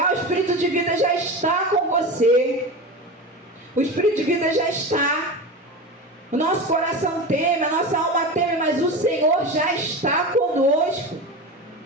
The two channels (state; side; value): normal; both; correlation 0.26